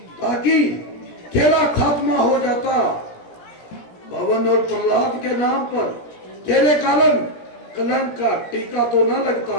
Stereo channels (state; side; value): late; right; 17 ms